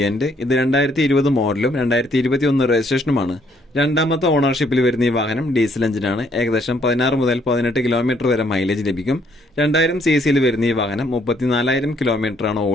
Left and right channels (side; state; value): both; normal; correlation 0.68